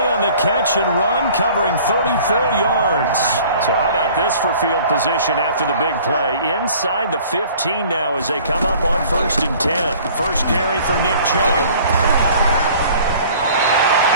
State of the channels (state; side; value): inverted; both; correlation -0.50